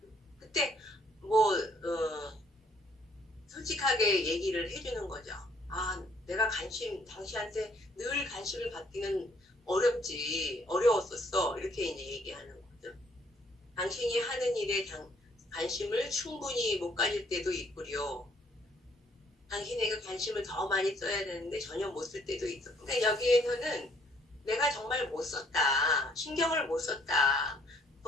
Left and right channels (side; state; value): both; normal; correlation 0.64